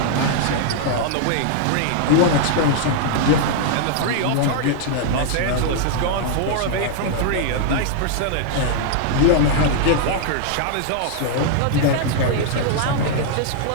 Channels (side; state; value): both; different; correlation -0.01